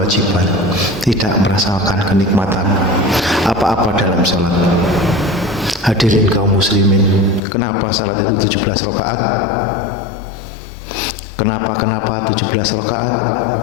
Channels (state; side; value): drops out; right; at 7.4 s